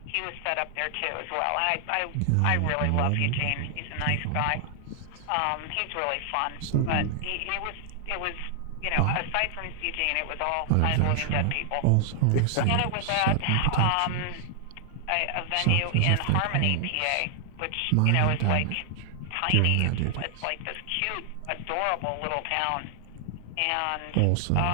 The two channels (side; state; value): both; different; correlation 0.00